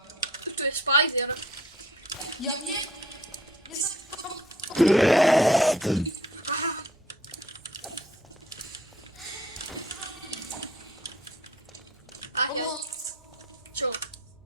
Tu je spider. Ja viem. Ja sa... Aha. A ja, Pomoc. čo?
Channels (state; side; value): normal; both; correlation 0.53